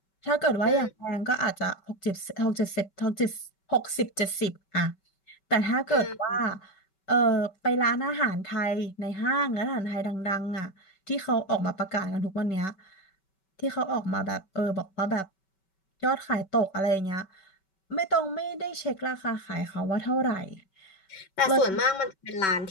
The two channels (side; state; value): right; late; 5.2 ms